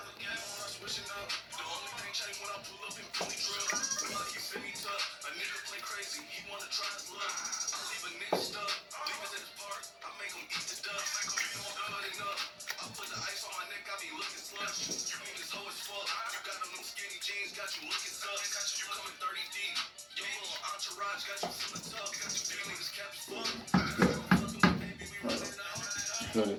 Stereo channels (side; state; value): both; identical; correlation 1.00